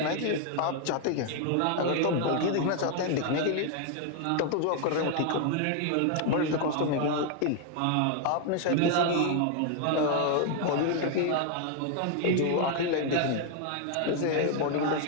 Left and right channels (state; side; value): different; both; correlation 0.00